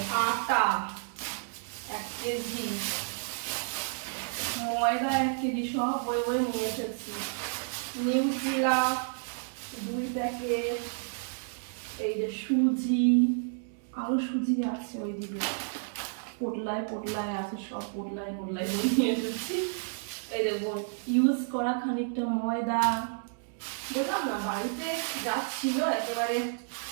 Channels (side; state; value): left; silent; 57 dB below the other